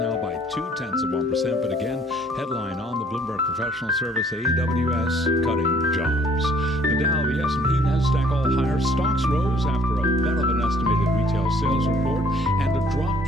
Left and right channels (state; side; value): normal; both; correlation 0.60